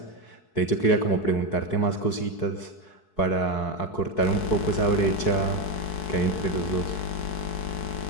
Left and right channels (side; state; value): right; late; 4.6 ms